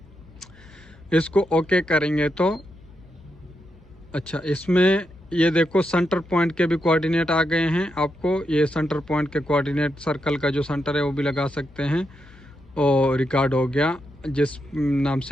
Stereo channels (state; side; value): noise; left; hum, 25 dB below the sound